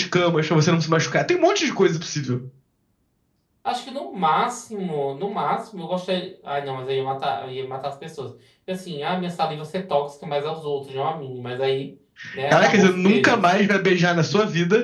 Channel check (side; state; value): both; identical; correlation 1.00